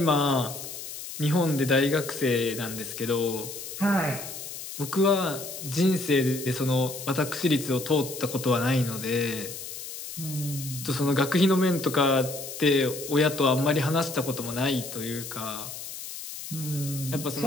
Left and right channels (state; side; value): noise; left; hiss, 10 dB below the sound